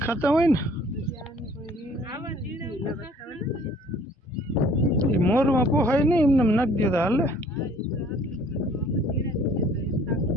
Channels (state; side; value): normal; both; correlation 0.55